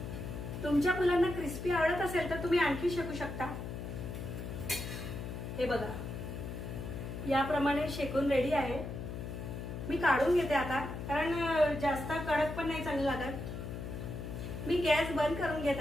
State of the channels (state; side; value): noise; left; hum, 7 dB below the sound